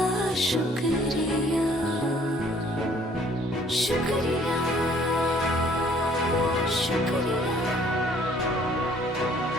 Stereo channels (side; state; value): both; normal; correlation 0.59